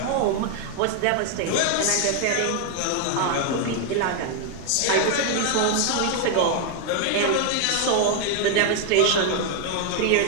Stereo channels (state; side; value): different; both; correlation 0.00